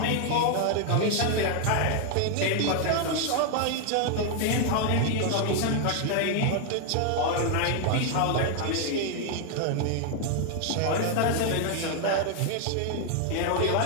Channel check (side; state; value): both; different; correlation 0.00